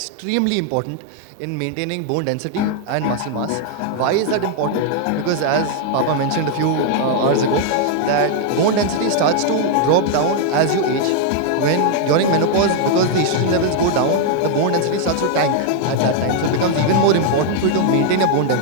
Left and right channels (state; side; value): different; both; correlation 0.00